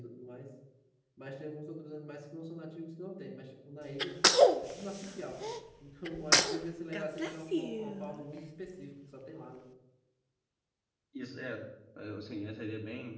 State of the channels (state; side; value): identical; both; correlation 1.00